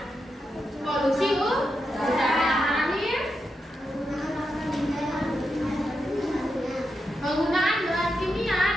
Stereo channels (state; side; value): normal; both; correlation 0.86